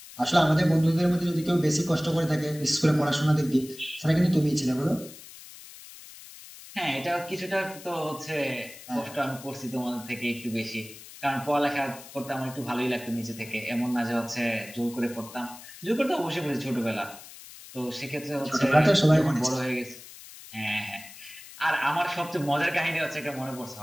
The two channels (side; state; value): left; noise; hiss, 17 dB below the sound